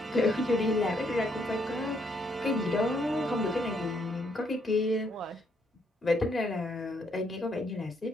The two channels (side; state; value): both; normal; correlation 0.73